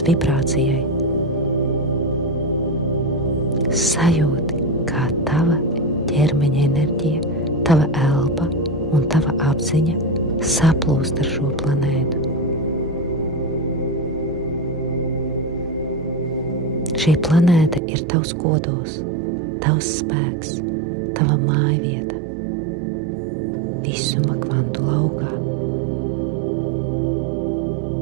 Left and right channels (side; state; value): left; drops out; at 17.8 s